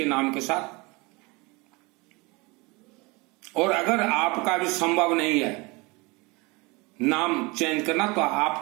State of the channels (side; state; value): left; quieter; 25.9 dB